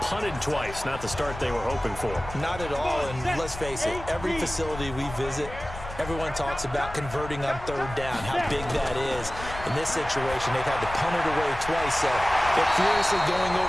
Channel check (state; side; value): noise; left; rumble, 12 dB below the sound